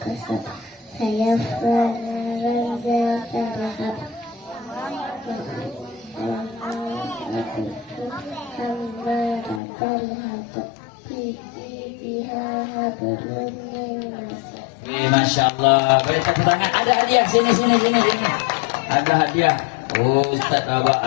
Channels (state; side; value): drops out; right; at 9.6 s